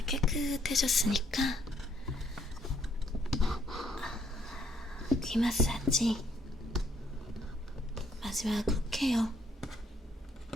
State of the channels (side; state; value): both; normal; correlation 0.68